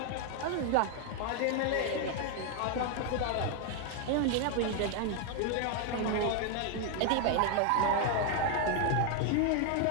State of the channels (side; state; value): both; different; correlation 0.00